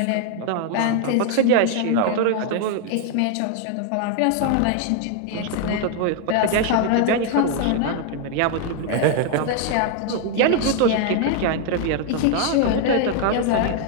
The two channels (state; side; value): different; both; correlation 0.00